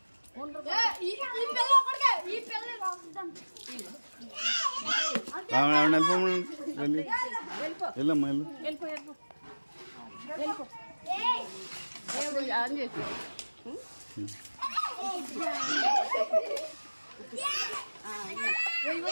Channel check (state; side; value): inverted; both; correlation -1.00